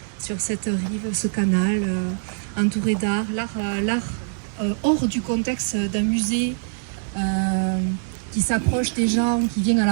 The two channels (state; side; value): silent; left; digital silence